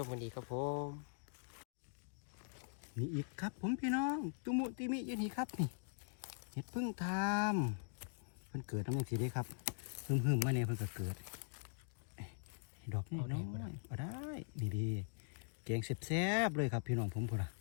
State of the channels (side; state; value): right; silent; digital silence